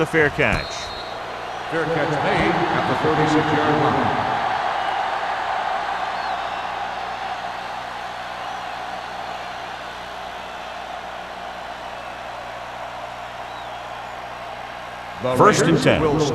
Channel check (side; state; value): both; identical; correlation 1.00